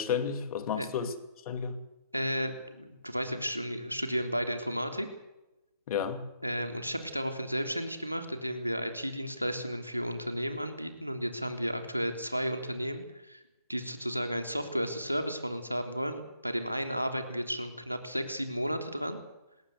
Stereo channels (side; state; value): both; inverted; correlation -0.80